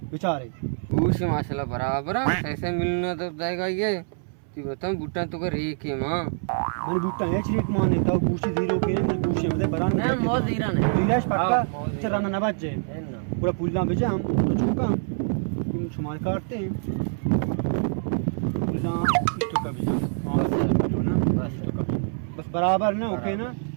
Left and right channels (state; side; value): silent; left; 61 dB below the other